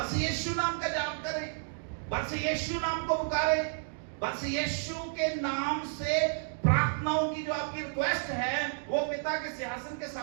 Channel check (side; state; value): left; silent; digital silence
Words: यीशु नाम का जाप करें, बस यीशु नाम को पुकारें, बस यीशु के नाम से प्रार्थनाओं की जो आपकी रिक्वेस्ट है वो पिता के सिंहासन के